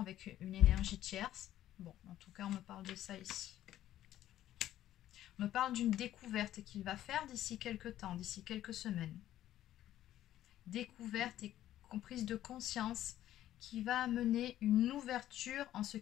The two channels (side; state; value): right; quieter; 12.8 dB